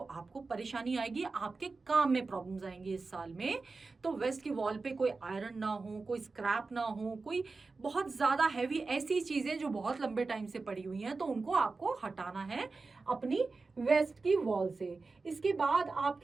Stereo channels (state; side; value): quieter; left; 4.0 dB